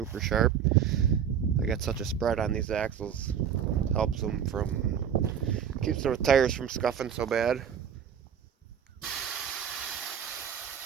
sharp. I got such a spread on these axles, helps them keeps the tires from scuffing so bad.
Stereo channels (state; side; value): quieter; left; 8.3 dB